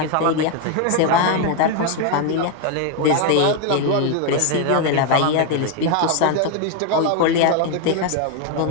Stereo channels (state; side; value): different; both; correlation 0.01